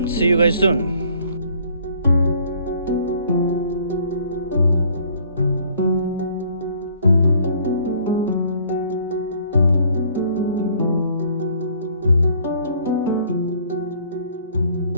see you guys soon.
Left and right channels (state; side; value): inverted; both; correlation -0.59